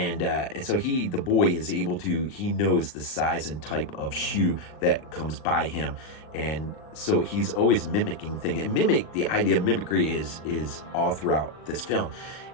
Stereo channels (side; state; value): right; late; 39 ms